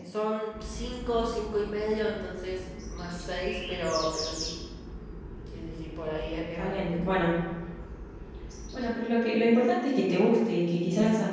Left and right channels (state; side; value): identical; both; correlation 1.00